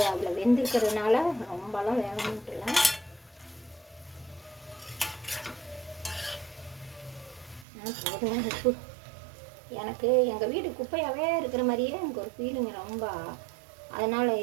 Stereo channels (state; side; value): drops out; left; at 7.7 s